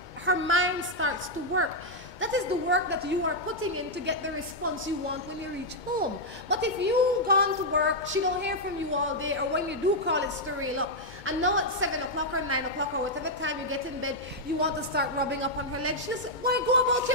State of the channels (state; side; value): late; right; 2.2 ms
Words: her mind starts to work. That is the work that you are putting in to get the response you want when you reach home. But if you've gone to work, she don't hear from you all day, or when you do call, it's to reel up. And now at 7 o'clock or 9 o'clock or whatever time you get in bed, you want to start rubbing up on her legs. She'll say, why go about